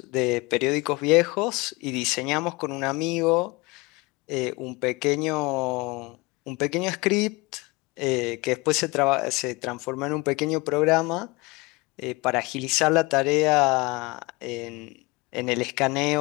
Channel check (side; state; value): right; quieter; 24.8 dB